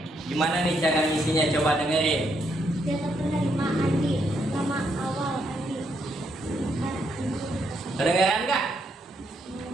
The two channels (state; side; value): normal; both; correlation 0.76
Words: Gimana nih cara ngisinya? Coba dengerin. Data penerima Andi, nama awal Andi. Kedengeran nggak?